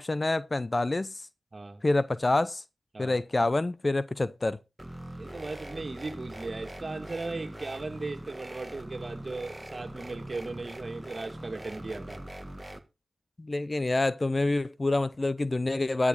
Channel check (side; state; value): both; normal; correlation 0.98